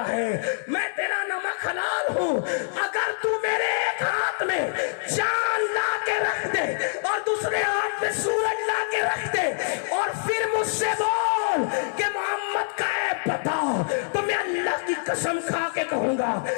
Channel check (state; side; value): silent; right; digital silence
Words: ہے, میں تیرا نمک حلال ہوں. اگر تو میرے ایک ہاتھ میں چاند لا کے رکھ دے اور دوسرے ہاتھ میں سورج لا کے رکھ دے اور پھر مجھ سے بول کہ محمد کا ہے پتہ تو میں اللہ کی قسم کھا کے کہوں گا